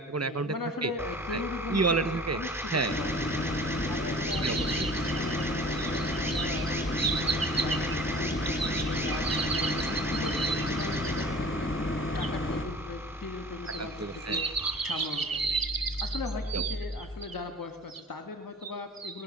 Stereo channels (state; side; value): normal; both; correlation 0.44